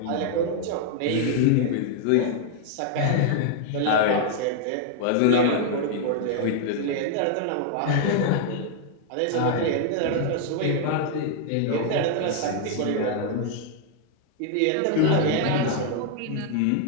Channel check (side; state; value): both; different; correlation 0.00